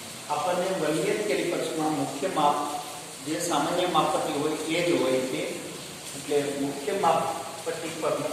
આપણને વર્નિયર કેલિપર્સમાં મુખ્ય માપ જે સામાન્ય માપપટ્ટી હોય એ જ હોય છે. એટલે મુખ્ય માપપટ્ટી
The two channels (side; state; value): both; identical; correlation 1.00